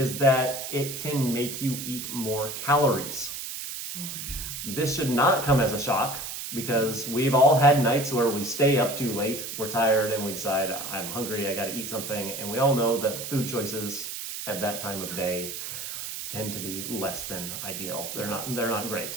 that it can make you eat more calories. Oh yeah. This should not come as a shock, because we've all had nights where we stay up too late, we're tired, and we decide, I'm hungry, I gotta eat something, and we all know that food choices at that time of day tend to be less than ideal. They're not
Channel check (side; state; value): right; noise; hiss, 7 dB below the sound